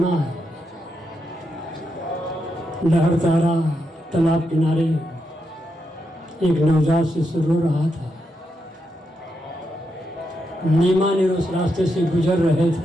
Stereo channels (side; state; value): both; normal; correlation 0.83